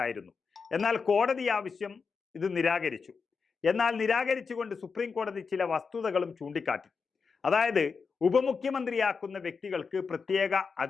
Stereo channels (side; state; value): right; quieter; 5.2 dB